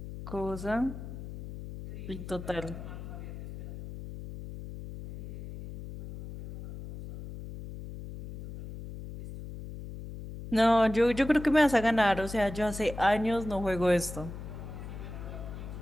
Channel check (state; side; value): noise; left; hum, 11 dB below the sound